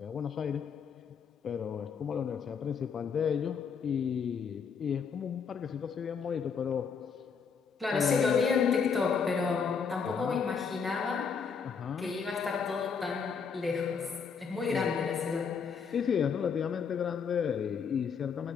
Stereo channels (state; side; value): quieter; right; 6.1 dB